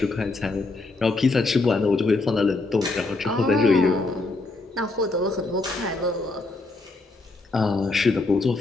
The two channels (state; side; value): quieter; right; 3.3 dB